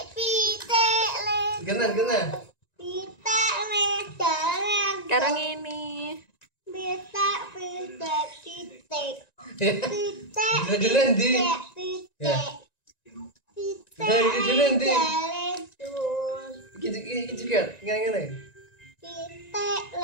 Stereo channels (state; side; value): late; right; 1.9 ms